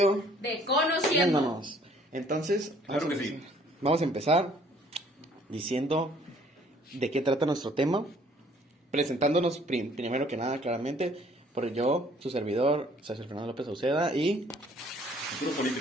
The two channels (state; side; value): normal; both; correlation 0.59